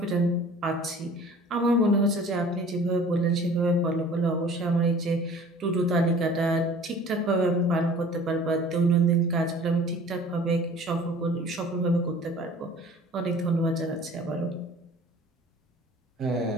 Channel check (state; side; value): normal; both; correlation 0.47